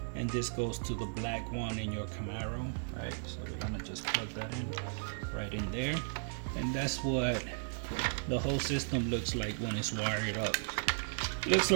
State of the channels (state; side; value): silent; left; digital silence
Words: and this goes to the black one in your Camaro, right? So we're gonna just plug that in right in there, and that's what the whole system looks like when it's wired up. Looks